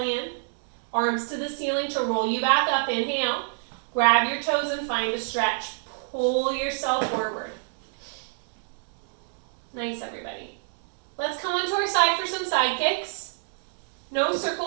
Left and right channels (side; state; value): left; silent; digital silence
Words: in. Arms to the ceiling to roll you back up. Inhale. Grab your toes and find a stretch. Pull yourself forward. Nice, everybody. Let's come onto our side for some side kicks. No